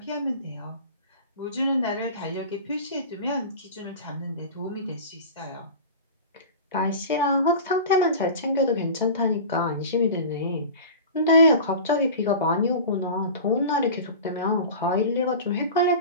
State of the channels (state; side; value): inverted; both; correlation -0.34